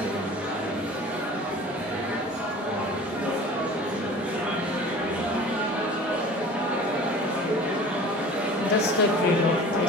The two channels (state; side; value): normal; both; correlation 0.42